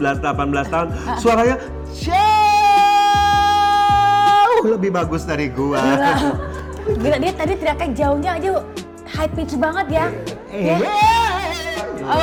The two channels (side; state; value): both; identical; correlation 1.00